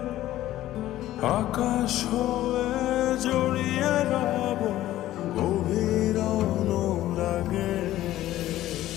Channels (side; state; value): right; quieter; 14.4 dB